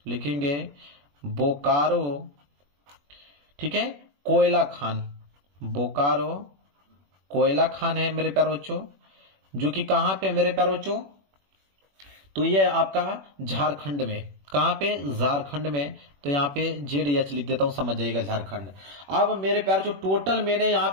लिखेंगे बोकारो। ठीक है, कोयला खान, बोकारो कोयला खान है मेरे प्यारे बच्चों, जो कि कहां पे मेरे प्यारे बच्चों, तो ये आपका झारखंड में, कहां पे, झारखंड में। तो यहाँ पे ZH लिख देता हूं, समझ जाइएगा झारखंड। अब मेरे प्यारे जो टोटल मैंने यहाँ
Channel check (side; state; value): left; late; 21 ms